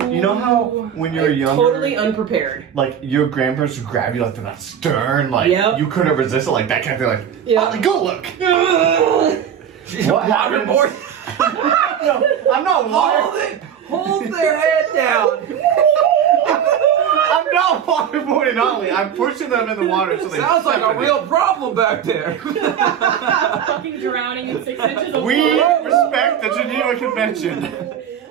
you know how when you're younger, Totally unprepared. like your grandparents would grab you like they're not stern, like Yep. you couldn't resist it, like that kind of thing, like, Yeah. Otley, go look. She's What waterboard. No, I'm not water. Hold their head down. I'm not waterboarding Otley. I'm pushing them in the water so they. Sounds like a real problem back there. Fucking drowning in 6 inches of We water. respect the Geneva Convention.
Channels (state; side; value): quieter; left; 8.7 dB